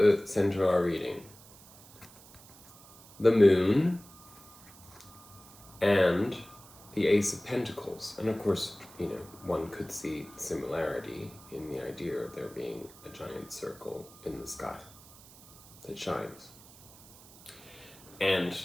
center of our reading? The moon and the Ace of Pentacles. And of course, one could see similarity in the idea of there being a giant circle in the sky that shines. And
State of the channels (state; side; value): noise; right; hiss, 22 dB below the sound